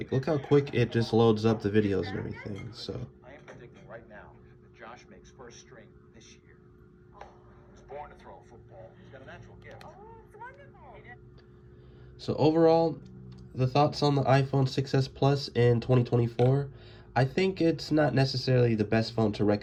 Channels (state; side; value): identical; both; correlation 1.00